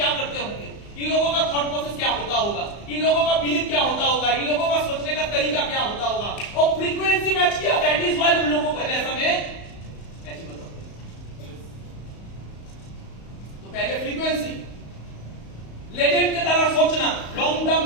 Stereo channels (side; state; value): right; late; 35 ms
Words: करते होंगे, इन लोगों का थॉट प्रोसेस क्या होता होगा, इन लोगों का बिलीफ क्या होता होगा, इन लोगों का सोचने का तरीका क्या होता होगा, और फ्रीक्वेंसी मैच किया। दैट इज व्हाई उन लोगों का जैसा मैं अचीव होता हूं। तो पहले फ्रीक्वेंसी, लेजेंड की तरह सोचना, लॉन्ग टर्म